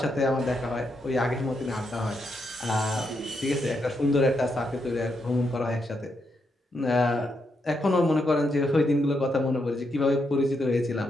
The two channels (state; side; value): normal; both; correlation 0.81